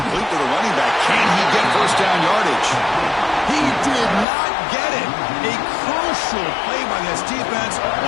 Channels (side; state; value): right; drops out; at 4.2 s